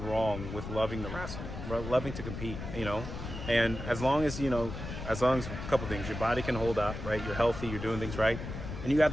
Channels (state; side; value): noise; left; rumble, 8 dB below the sound